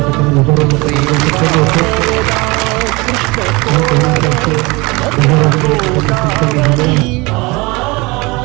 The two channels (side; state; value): left; quieter; 24.7 dB